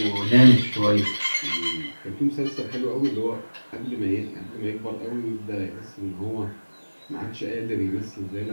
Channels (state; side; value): inverted; both; correlation -1.00